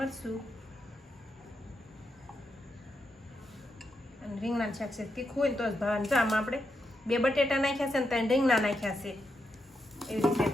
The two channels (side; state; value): both; normal; correlation 0.84